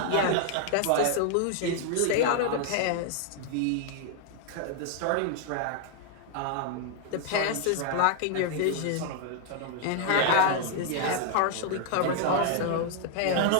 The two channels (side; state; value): both; different; correlation 0.00